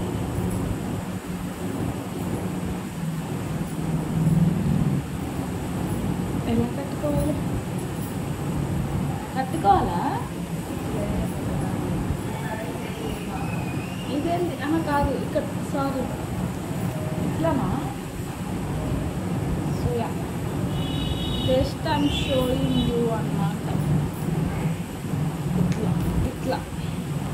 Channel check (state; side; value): identical; both; correlation 1.00